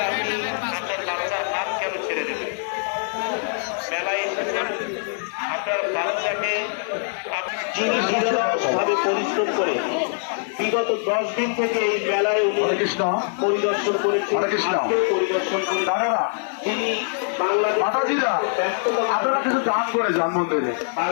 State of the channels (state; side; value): silent; right; 63 dB below the other